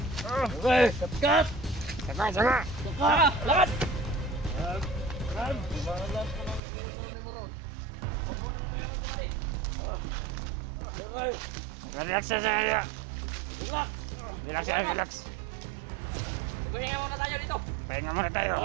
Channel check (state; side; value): drops out; left; at 6.6 s